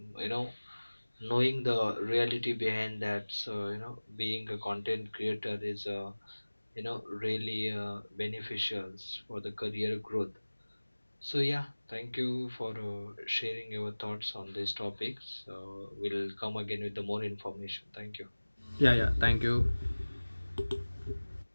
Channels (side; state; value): both; inverted; correlation -1.00